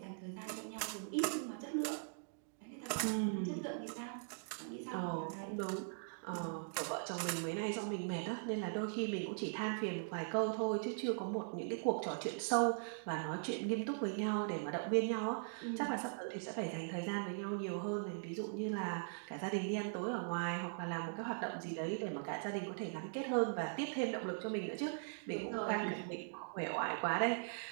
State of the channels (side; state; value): left; silent; digital silence